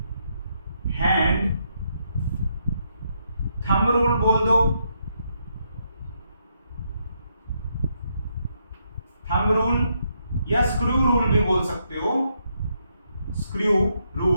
हैंड थंब रूल बोल दो, थंब रूल, या स्क्रू रूल भी बोल सकते हो, स्क्रू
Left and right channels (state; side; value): inverted; both; correlation -0.78